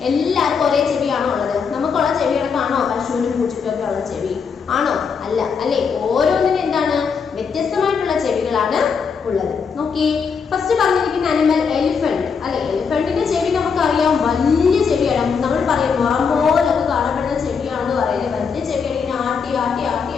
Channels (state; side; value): quieter; right; 6.0 dB